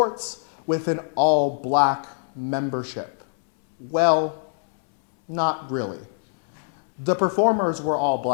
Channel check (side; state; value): right; silent; 63 dB below the other